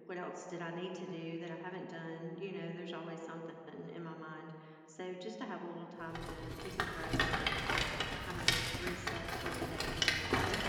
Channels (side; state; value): both; identical; correlation 1.00